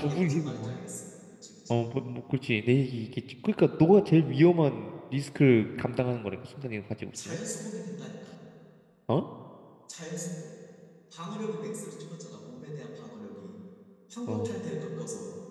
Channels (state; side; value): identical; both; correlation 1.00